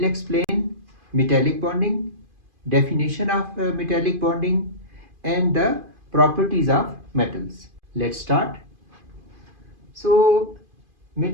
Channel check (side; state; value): left; late; 2.5 ms